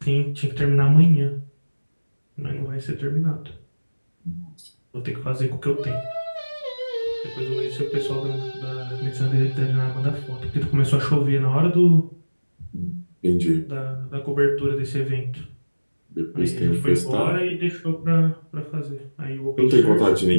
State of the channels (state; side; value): inverted; both; correlation -1.00